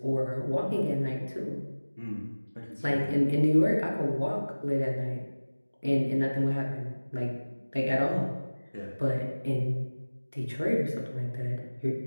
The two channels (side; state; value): both; inverted; correlation -1.00